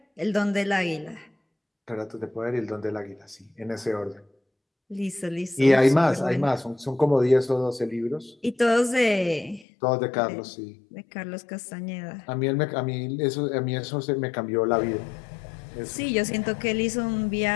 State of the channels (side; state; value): right; drops out; at 9.7 s